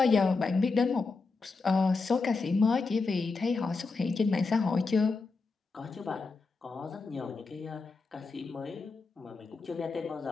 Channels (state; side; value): quieter; right; 4.1 dB